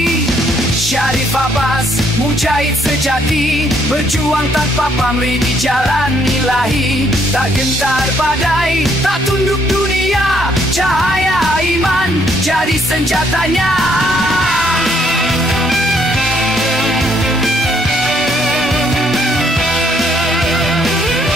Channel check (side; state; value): both; normal; correlation 0.69